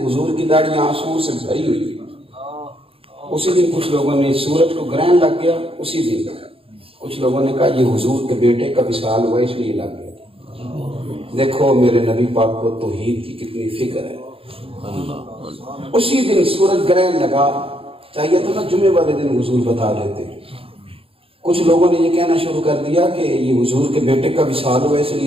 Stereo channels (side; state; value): left; late; 0.27 ms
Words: حضور کی داڑھی آنسوؤں سے بھری ہوئی ہے۔ اسی دن کچھ لوگوں نے سورج کو گرہن لگ گیا، اسی دن کچھ لوگوں نے کہا یہ حضور کے بیٹے کا وصال ہوا اس لیے لگ گیا۔ دیکھو میرے نبی پاک کو توحید کی کتنی فکر ہے۔ اسی دن سورج گرہن لگا، چاہیے تو نا جمعے والے دن حضور بتا دیتے۔ کچھ لوگوں نے یہ کہنا شروع کر دیا کہ یہ حضور کے بیٹے کا وصال ہوا اس